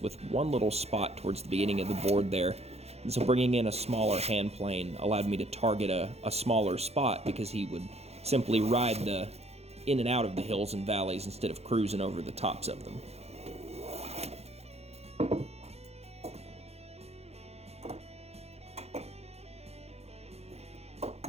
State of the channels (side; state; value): left; late; 0.30 ms